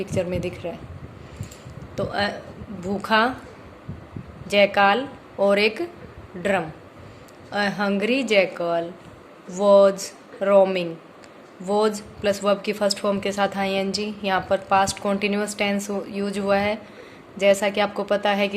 में दिख रहा है। तो भूखा, जैकाल और एक drum. A Hungary jackal was roaming. Was plus verb की फर्स्ट फॉर्म के साथ आईएनजी, यहाँ पर पास्ट कॉन्टिन्यूस टेंस यूज हुआ है। जैसा कि आपको पता है कि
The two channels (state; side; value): identical; both; correlation 1.00